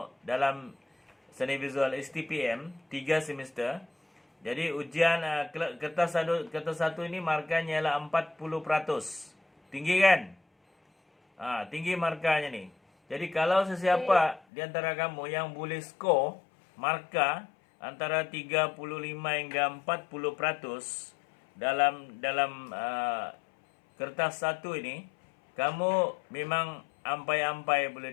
dalam seni visual STPM 3 semester. Jadi ujian kertas satu ini markanya ialah 40%. Tinggi kan? Tinggi markanya ni. Jadi kalau sesiapa di antara kamu yang boleh skor markah antara 35 hingga 40% dalam kertas satu ini, kamu memang ampai-ampai boleh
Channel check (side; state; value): right; drops out; at 14.4 s